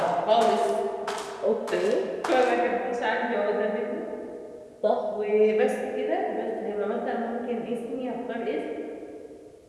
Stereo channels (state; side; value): identical; both; correlation 1.00